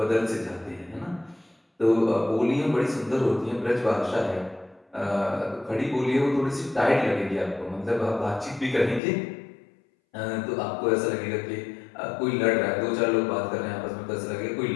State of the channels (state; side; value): drops out; right; at 9.0 s